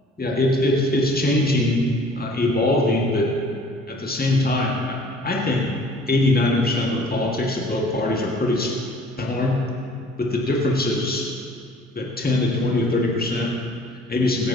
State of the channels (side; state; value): both; normal; correlation 0.52